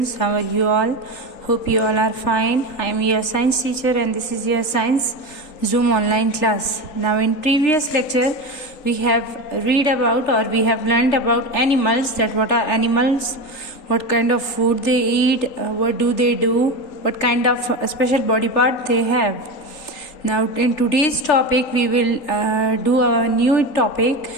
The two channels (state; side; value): late; right; 3.8 ms